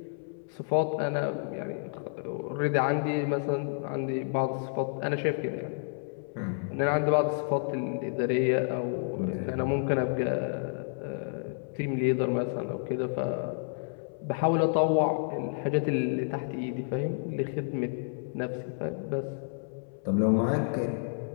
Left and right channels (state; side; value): silent; right; 58 dB below the other